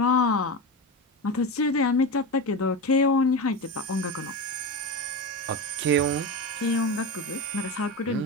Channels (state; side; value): normal; both; correlation 0.21